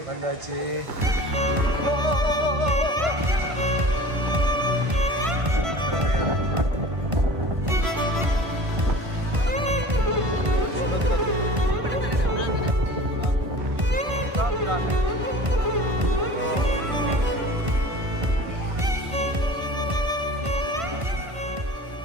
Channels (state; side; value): late; left; 1.5 ms